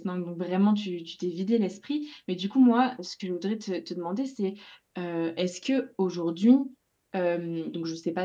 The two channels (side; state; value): both; identical; correlation 1.00